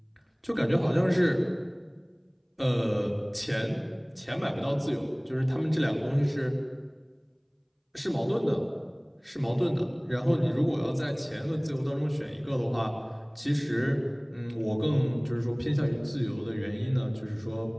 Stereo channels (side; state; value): both; identical; correlation 1.00